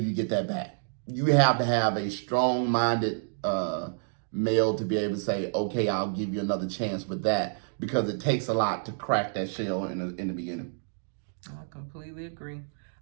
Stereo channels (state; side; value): silent; left; digital silence